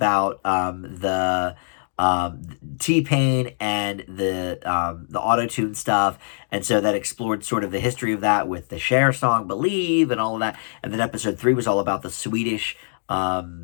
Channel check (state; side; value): silent; right; digital silence